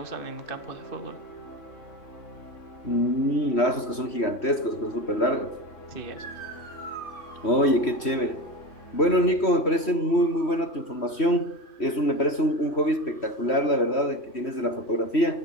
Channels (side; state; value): right; late; 3.1 ms